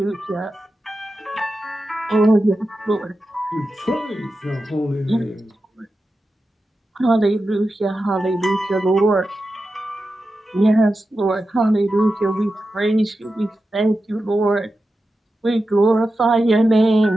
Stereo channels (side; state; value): both; normal; correlation 0.91